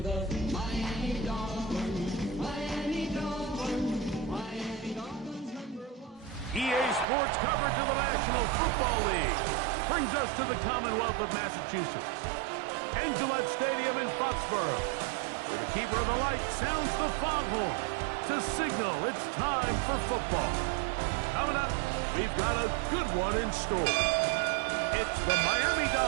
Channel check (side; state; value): left; drops out; at 7.1 s